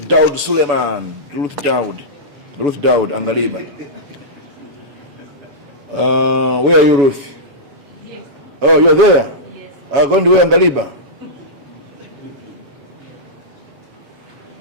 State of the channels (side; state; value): left; late; 7.2 ms